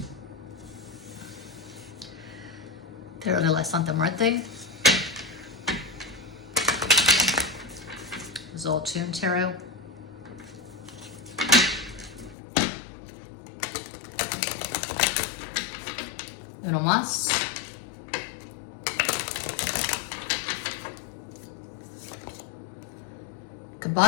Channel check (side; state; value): right; drops out; at 12.4 s